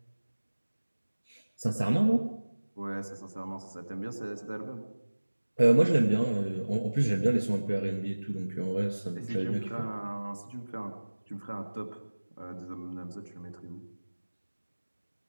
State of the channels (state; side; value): inverted; both; correlation -1.00